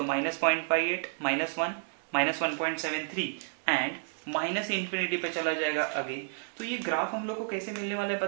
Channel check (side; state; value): left; silent; digital silence